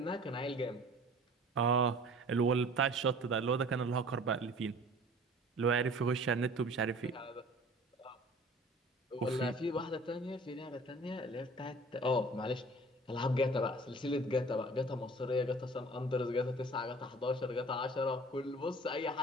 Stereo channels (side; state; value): both; normal; correlation 0.46